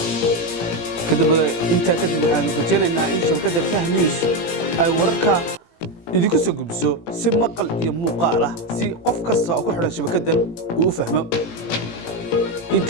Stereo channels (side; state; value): right; late; 18 ms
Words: kadib inta waxaan rajaynaynaa in shabakada Kah News ay wararka idinku soo gudbiso si maqal iyo muuqaal ah si qof kasta oo ku xidhan shabakadan uu u fahmo inta